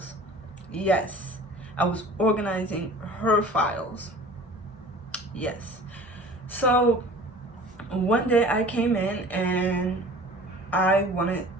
Yes, I was organizing her files. Yes. So one day I came in and I wanted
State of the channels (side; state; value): both; normal; correlation 0.44